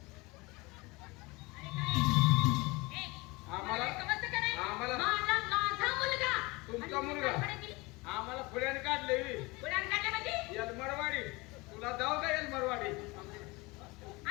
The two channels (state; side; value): quieter; right; 24.4 dB